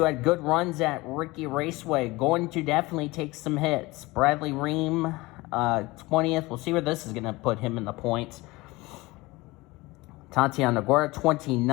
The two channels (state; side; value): quieter; right; 21.5 dB